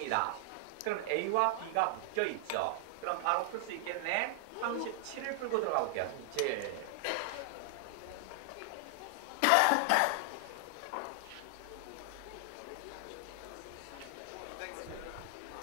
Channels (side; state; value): both; different; correlation 0.00